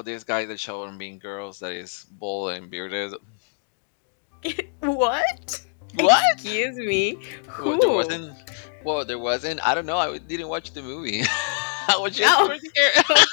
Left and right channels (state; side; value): silent; right; digital silence